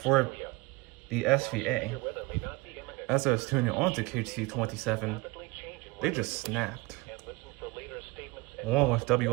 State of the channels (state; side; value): quieter; left; 23.4 dB